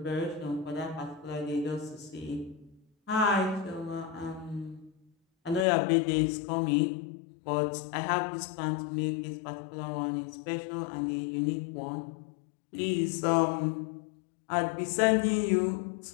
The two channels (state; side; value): drops out; right; at 5.7 s